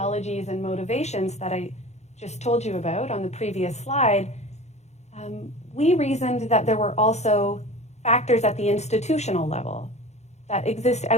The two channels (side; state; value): right; late; 0.32 ms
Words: and motivations that I just told you about on the previous slide, we reasoned that there were also factors at the institutional level that exist